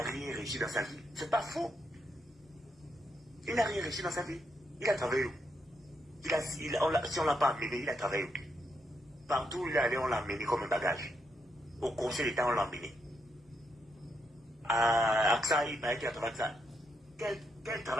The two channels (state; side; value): normal; both; correlation 0.79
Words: rien réussi dans sa vie. C'est pas faux. Il n'a rien réussi dans sa vie. Il a travaillé où? Si on ne l'a pas amené, il a travaillé où? Partout où il est allé, on l'a amené comme un bagage. Au conseil d'État, on l'a amené. À AXA, il paraît qu'il a travaillé avec ça. Quel